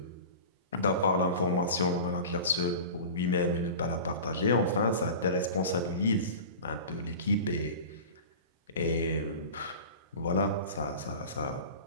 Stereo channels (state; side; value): inverted; both; correlation -0.35